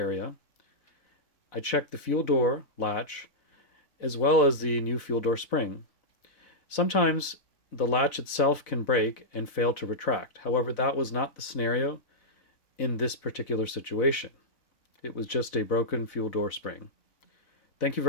I checked the fuel door latch as well as the new fuel door spring. Sometimes the latch itself can break and fail to retract. However, that was not the scenario in this particular situation. It was just a broken fuel door spring. Thank you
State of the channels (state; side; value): late; right; 4.0 ms